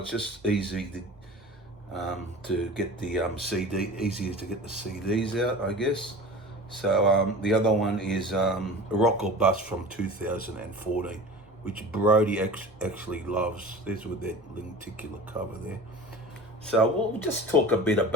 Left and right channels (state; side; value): normal; both; correlation 0.37